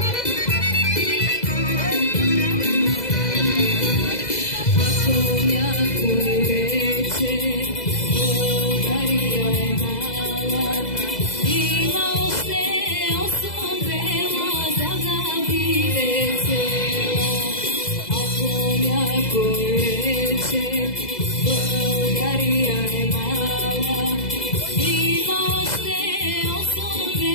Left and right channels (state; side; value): late; right; 2.0 ms